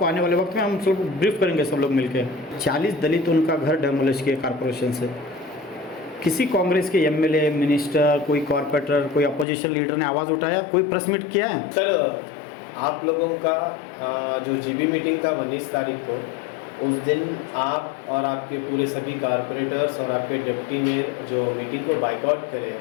आने वाले वक्त में हम सब ब्रीफ करेंगे सब लोग मिलकर। 40 दलित उनका घर डेमोलिश किए कॉरपोरेशन से। किसी कांग्रेस के एमएलए, मिनिस्टर, कोई कॉर्पोरेटर, कोई अपोजिशन लीडर ने आवाज़ उठाया, कोई प्रेस मीट किया है? सर, आप लोगों का जो जीबी मीटिंग था 19 तारीख को, उस दिन आप और आपके पूरे सभी कारपोरेटर्स और आपके डिप्टी मेयर जो मीटिंग को बाइकआउट करे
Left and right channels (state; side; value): drops out; right; at 9.5 s